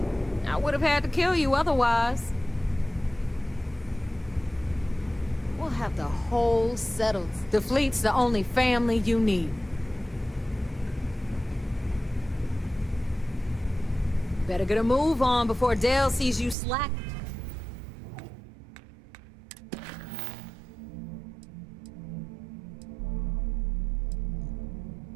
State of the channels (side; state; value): left; drops out; at 16.6 s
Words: I would have had to kill you otherwise. We'll have the whole settled. The fleet's the only family you need. Better get a move on before Dale sees you slack.